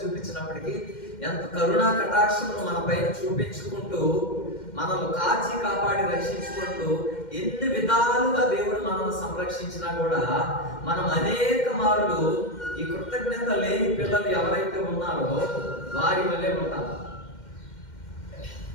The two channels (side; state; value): right; late; 2.1 ms